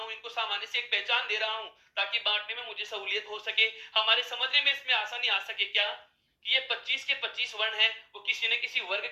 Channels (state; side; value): identical; both; correlation 1.00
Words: इनको सामान्य से एक पहचान दे रहा हूं ताकि बांटने में मुझे सहूलियत हो सके, हमारे समझने में इसमें आसानी आ सके। क्या कि ये 25 के 25 वर्ण हैं वो किसी न किसी वर्ग